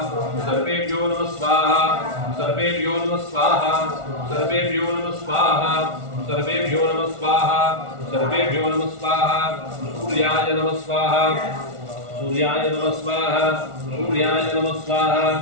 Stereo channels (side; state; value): left; late; 1.4 ms